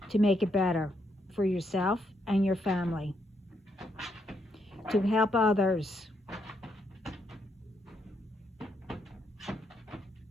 to make it better for yourself and your family, to help others,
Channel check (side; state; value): both; normal; correlation 0.77